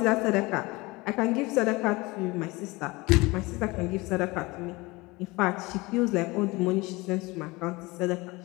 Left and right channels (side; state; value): right; quieter; 23.1 dB